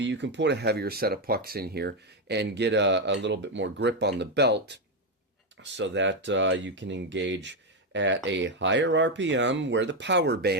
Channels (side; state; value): both; normal; correlation 0.06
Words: you can put a heavier set of pucks in here and get a little bit more grip on the belt so that you can engage at a higher RPM where the power